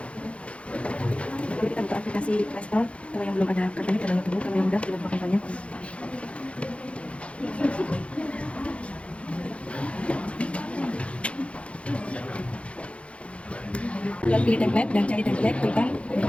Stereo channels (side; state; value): right; late; 0.061 ms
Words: Lalu kita buka aplikasi Play Store. Kalau yang belum ada kartunya, kita download dulu. Kalau yang udah, kita buka kartunya. Lalu pilih template dan cari template, tekan